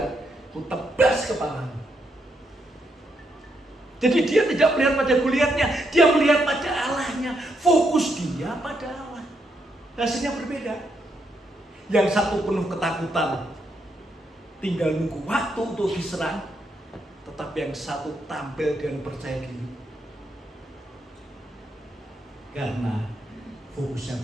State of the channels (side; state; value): both; normal; correlation 0.78